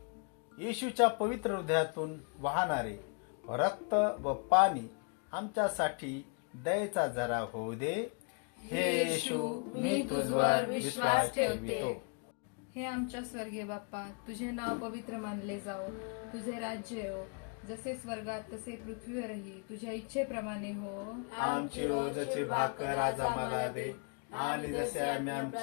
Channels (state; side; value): quieter; right; 37.9 dB